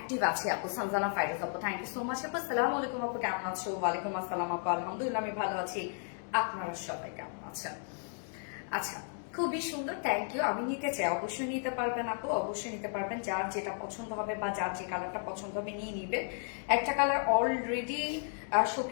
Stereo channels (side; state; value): right; silent; 55 dB below the other